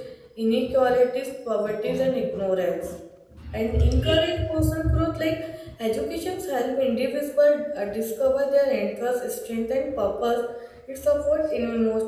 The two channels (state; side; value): identical; both; correlation 1.00